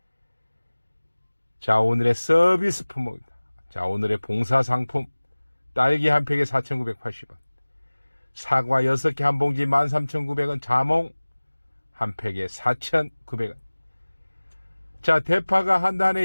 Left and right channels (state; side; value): inverted; both; correlation -1.00